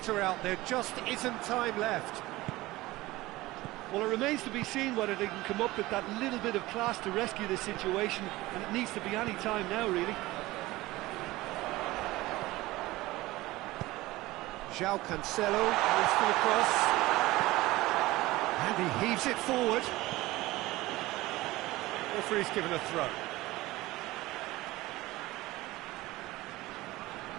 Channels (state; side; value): quieter; left; 18.8 dB